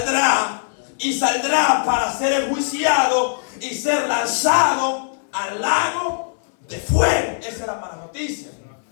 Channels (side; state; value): right; silent; 65 dB below the other